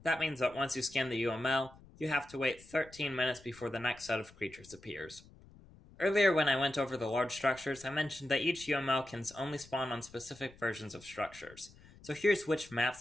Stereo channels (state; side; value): noise; left; rumble, 23 dB below the sound